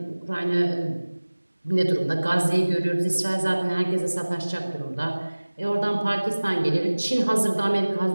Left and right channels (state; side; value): inverted; both; correlation -1.00